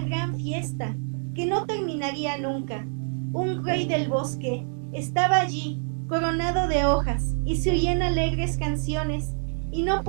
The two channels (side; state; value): left; silent; 61 dB below the other